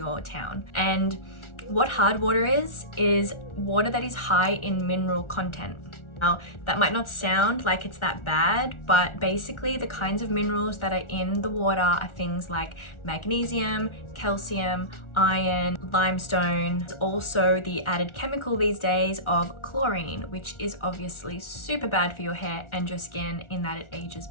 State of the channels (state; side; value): late; right; 1.4 ms